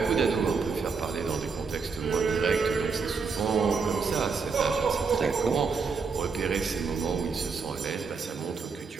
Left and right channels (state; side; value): quieter; left; 5.1 dB